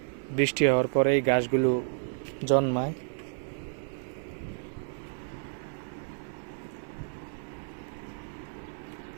বৃষ্টি হওয়ার পরে এই ঘাসগুলো জন্মায়।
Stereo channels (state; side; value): silent; left; digital silence